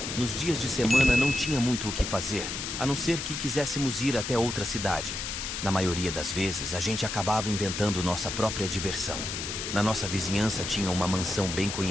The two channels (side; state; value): left; noise; hiss, 4 dB below the sound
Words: nos dias de semana não tinha muito o que fazer, a não ser que quiséssemos ir até outra cidade. Na maioria das vezes, a gente acabava inventando nossa própria diversão. Na nossa vizinhança tinha uma mansão bem